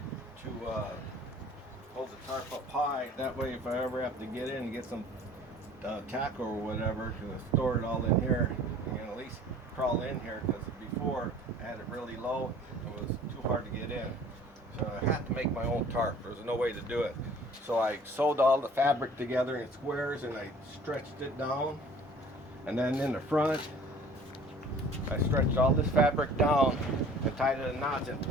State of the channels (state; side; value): normal; both; correlation 0.49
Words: to hold the tarp up high. That way if I ever have to get in and get some tackle or whatever, to store it all in here, I can at least crawl in here, because before I had it really low, it was too hard to get in. So I had to make my own tarp. There was no way to do it. So I sewed all the fabric together in squares and I stretched it down. And then in the front, I stretched all this fabric down and tied it in knots and